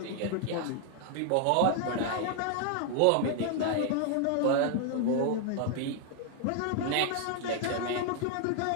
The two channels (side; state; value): both; different; correlation 0.00